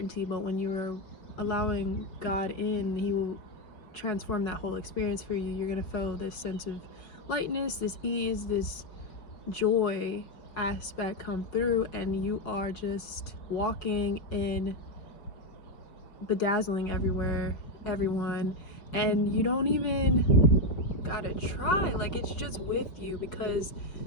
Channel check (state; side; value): late; right; 5.3 ms